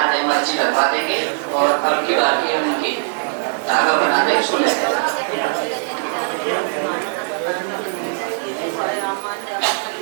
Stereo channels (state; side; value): silent; left; 66 dB below the other